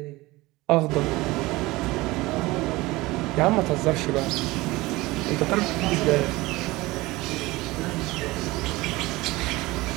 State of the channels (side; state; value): left; quieter; 20.4 dB